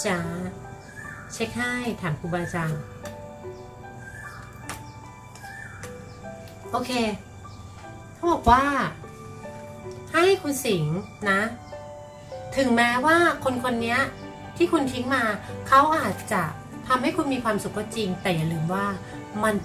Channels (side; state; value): both; identical; correlation 1.00